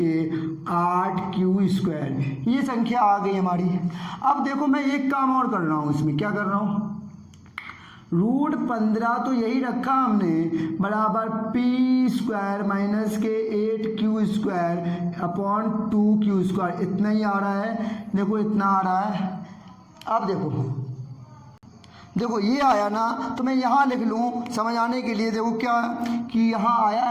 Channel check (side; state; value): both; identical; correlation 1.00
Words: 8q², ये संख्या आ गई हमारी। अब देखो मैं एक काम और कर रहा हूँ, इसमें क्या कर रहा हूँ? √15 तो यही रखा हमने बराबर p² - के 8q² / 2q², इतना ही आ रहा है। देखो इतना आ रहा है। अब देखो ये आया ना, तो मैं यहाँ लिख लूँ समझ आने के लिए। देखो क्या कि यहाँ आया